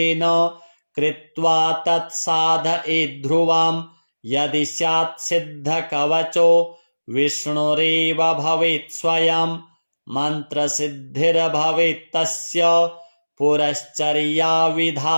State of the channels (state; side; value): inverted; both; correlation -1.00